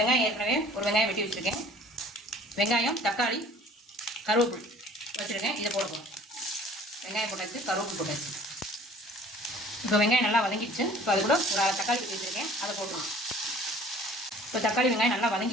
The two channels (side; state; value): both; normal; correlation 0.50